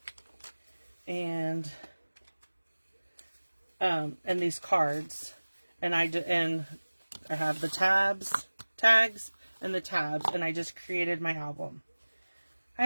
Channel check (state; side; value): inverted; both; correlation -1.00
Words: and these cards, and I have the tags and the tabs, and I just created my album.